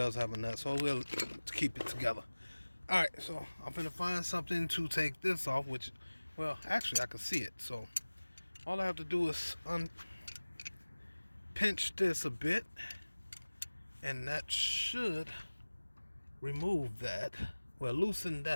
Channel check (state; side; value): inverted; both; correlation -1.00